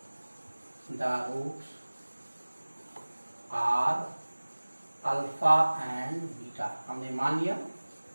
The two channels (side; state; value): both; inverted; correlation -1.00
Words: alpha and beta, हमने मान लिया